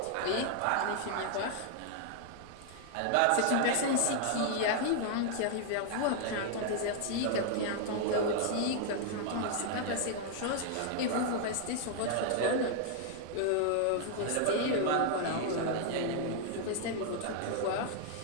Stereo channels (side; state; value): both; different; correlation 0.00